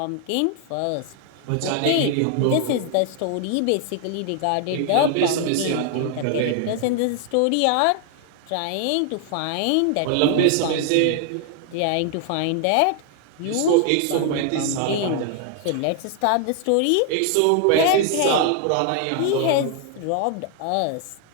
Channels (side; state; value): both; different; correlation 0.00